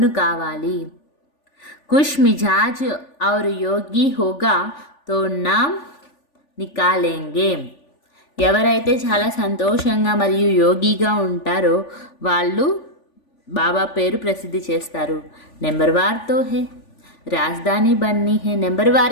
కావాలి. కుష్ మిజాజ్ ఔర్ యోగి హోగా తో నామ్ నికాలేంగే. ఎవరైతే చాలా సంతోషంగా మరియు యోగిగా ఉంటారో వాళ్ళు బాబా పేరు ప్రసిద్ధి చేస్తారు. నెంబర్ వార్తో హే రాజధాని బన్నీ హే. నెంబర్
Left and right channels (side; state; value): right; late; 3.4 ms